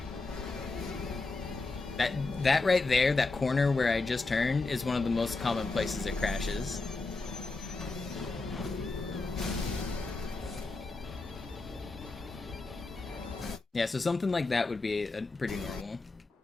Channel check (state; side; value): quieter; right; 3.5 dB